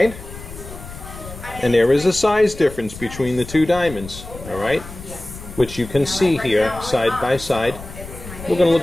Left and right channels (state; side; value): noise; left; rumble, 13 dB below the sound